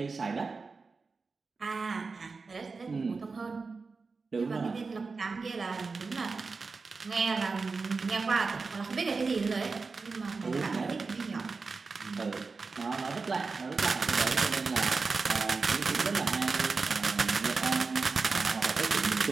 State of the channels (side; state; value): left; quieter; 4.4 dB